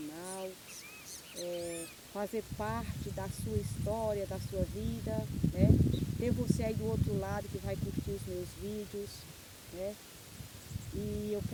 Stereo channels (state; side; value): identical; both; correlation 1.00